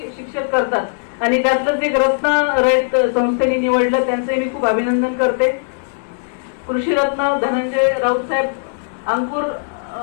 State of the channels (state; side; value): silent; right; digital silence